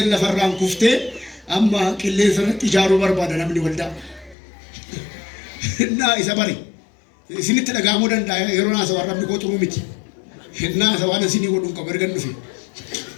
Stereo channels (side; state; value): right; drops out; at 4.4 s